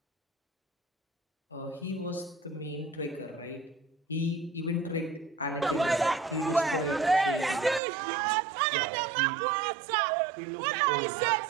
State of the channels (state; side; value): drops out; left; at 7.8 s